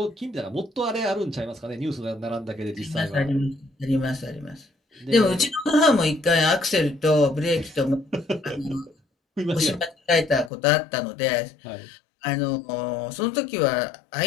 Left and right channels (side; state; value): right; drops out; at 10.5 s